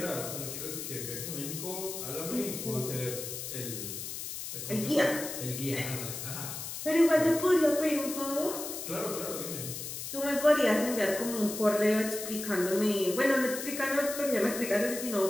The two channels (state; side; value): noise; left; hiss, 7 dB below the sound